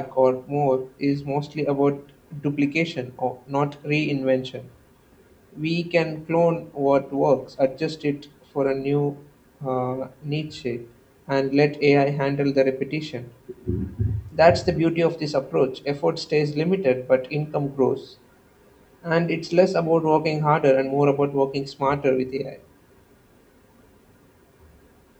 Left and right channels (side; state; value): both; identical; correlation 1.00